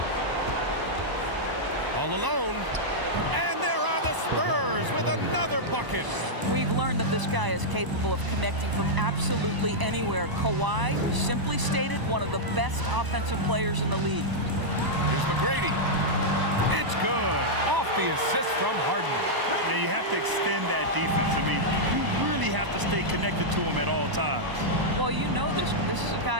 All alone. And there are the Spurs with another bucket. We've learned that this guy is capable of connecting from absolutely anywhere. Kawhi, simply stated, one of the best offensive players in the league. Here's McGrady. It's good. Off the assist from Harden. Now you have to extend that defense. I mean, you really have to stay connected to him at all times. Well, you know this. This is a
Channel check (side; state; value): left; late; 1.0 ms